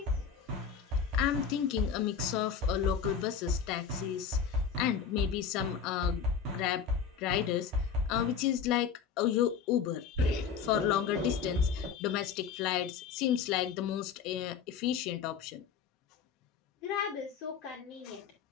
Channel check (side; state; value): right; quieter; 6.9 dB